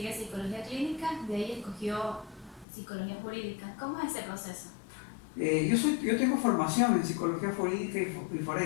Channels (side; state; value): right; drops out; at 2.7 s